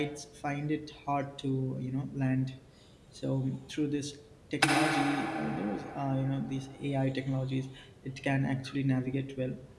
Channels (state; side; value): identical; both; correlation 1.00